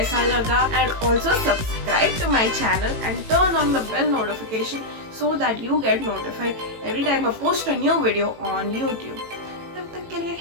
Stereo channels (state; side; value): late; left; 18 ms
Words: लगा, and also subscribe to my channel and turn on the bell notification so that you get notified every time I post a new video on YouTube. तब तक के लिए